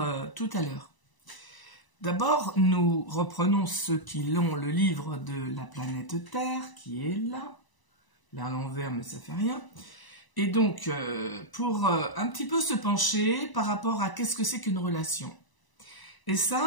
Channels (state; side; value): late; right; 1.0 ms